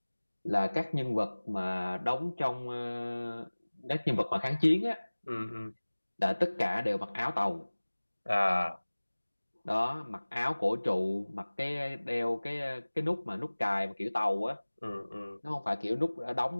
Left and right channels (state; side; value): inverted; both; correlation -1.00